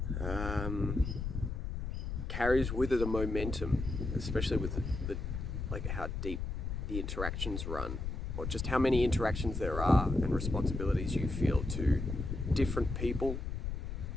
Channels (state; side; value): noise; left; rumble, 4 dB below the sound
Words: carries with it a momentum, especially with the how deep the interactions run, or just how many interactions there are and responsibilities you feel to different people